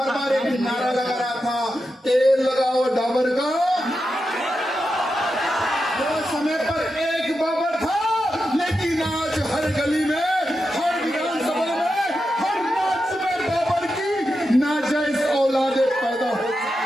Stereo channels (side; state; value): both; normal; correlation 0.88